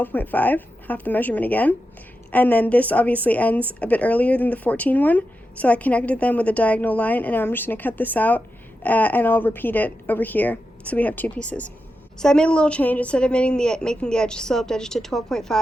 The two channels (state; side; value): normal; both; correlation 0.89